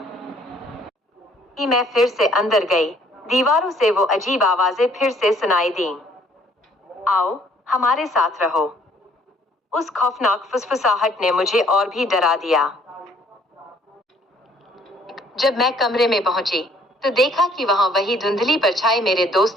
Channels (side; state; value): both; normal; correlation 0.61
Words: मैं फिर से अंदर गई। दीवारों से वो अजीब आवाजें फिर से सुनाई दीं, आओ हमारे साथ रहो। उस खौफनाक फुसफुसाहट ने मुझे और भी डरा दिया। जब मैं कमरे में पहुंची तो देखा कि वहां वही धुंधली परछाई मेरे